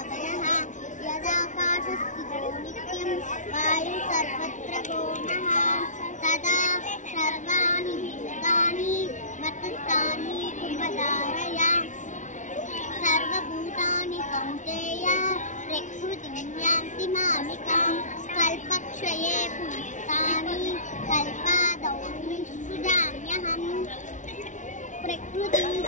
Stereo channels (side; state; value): right; late; 0.36 ms